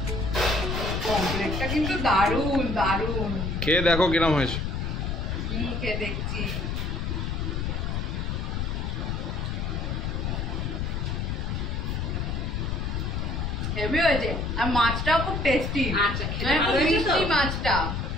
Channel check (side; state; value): left; noise; rumble, 1 dB below the sound